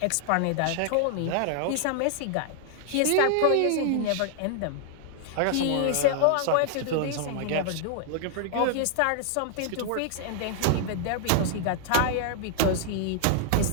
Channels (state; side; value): different; both; correlation -0.01